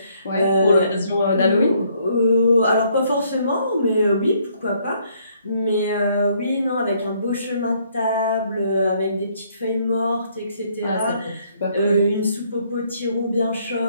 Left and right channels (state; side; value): inverted; both; correlation -0.67